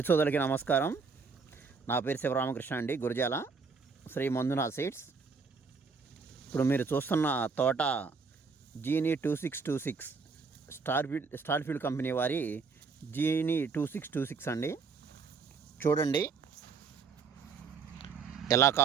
సోదరులకి నమస్కారం. నా పేరు శివరామకృష్ణ అండి, గురజాల శ్రీ మంజునా సీడ్స్. ఇప్పుడు మీరు చూస్తున్న తోట జీనీ 2626 స్టార్ఫీల్డ్ కంపెనీ వారి జీనీ 2626 అండి. చూడండి ఎలా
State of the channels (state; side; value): quieter; left; 4.9 dB